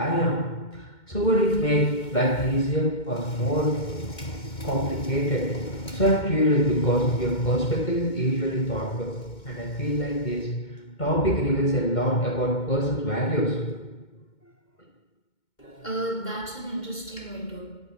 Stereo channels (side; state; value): right; late; 2.2 ms